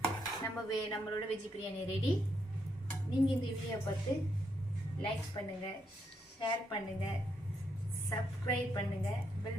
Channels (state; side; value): normal; both; correlation 0.78